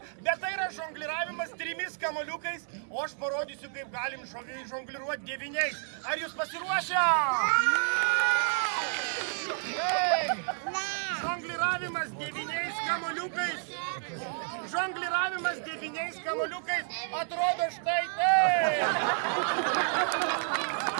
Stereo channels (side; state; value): left; silent; 57 dB below the other